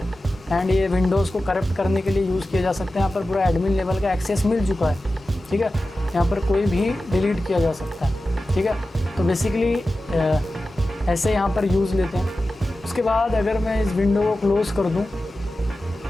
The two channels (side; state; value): both; normal; correlation 0.94